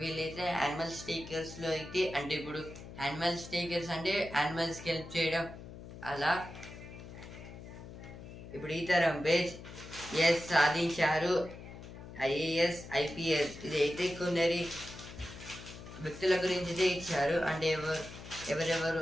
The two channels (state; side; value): noise; left; hum, 13 dB below the sound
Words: వీళ్ళైతే యానిమల్ స్టేకర్స్ లో అయితే అంటే ఇప్పుడు యానిమల్ స్టేకర్స్ అంటే యానిమల్స్కి హెల్ప్ చేయడం అలా. ఇప్పుడు ఈ తరం పేజ్ ఎస్ సాధించారు IAS IPS. ఇదైతే కొందరి వ్యక్తుల గురించి అయితే ఇచ్చారు అంటే ఎవరెవరు